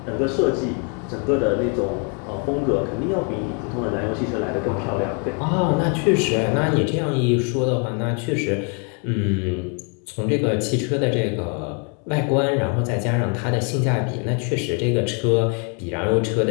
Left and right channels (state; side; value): quieter; right; 37.5 dB